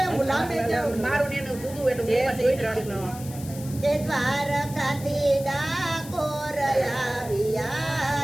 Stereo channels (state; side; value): noise; left; hiss, 15 dB below the sound